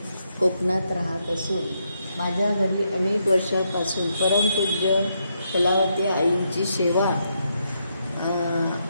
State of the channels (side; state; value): both; inverted; correlation -0.79